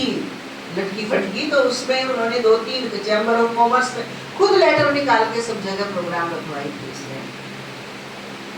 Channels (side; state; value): both; identical; correlation 1.00